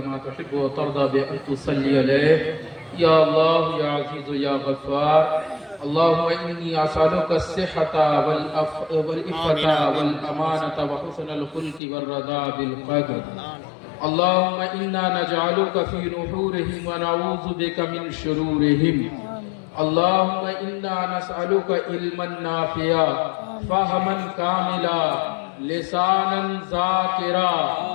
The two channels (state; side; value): drops out; right; at 11.8 s